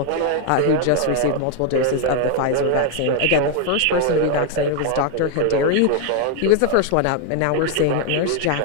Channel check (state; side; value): different; both; correlation 0.00